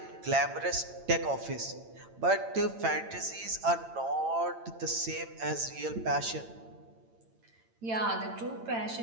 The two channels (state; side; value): late; left; 8.9 ms